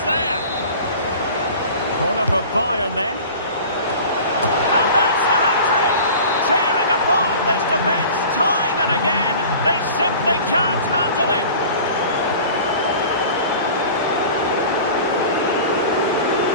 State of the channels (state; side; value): inverted; both; correlation -0.40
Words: there. Corner for Bayern then. And that's the hat-trick. Tearing apart this defence time and again. They simply can't handle him.